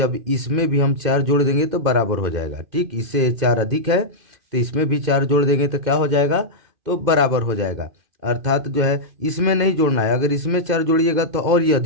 इसमें भी हम 4 जोड़ देंगे तो बराबर हो जाएगा। ठीक, इससे 4 अधिक है तो इसमें भी 4 जोड़ देंगे तो क्या हो जाएगा, तो बराबर हो जाएगा। अर्थात जो है इसमें नहीं जोड़ना है, अगर इसमें 4 जोड़िएगा तो और ये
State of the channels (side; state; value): left; late; 2.1 ms